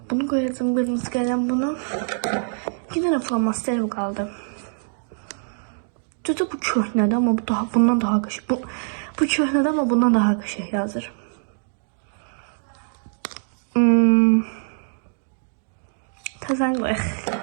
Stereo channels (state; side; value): silent; left; digital silence